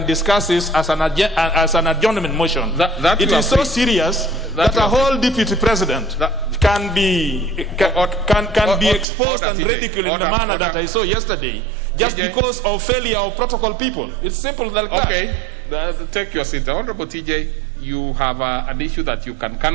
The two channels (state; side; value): drops out; left; at 9.1 s